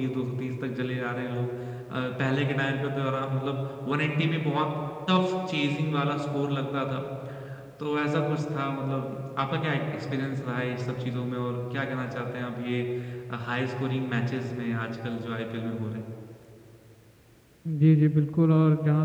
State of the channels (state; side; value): identical; both; correlation 1.00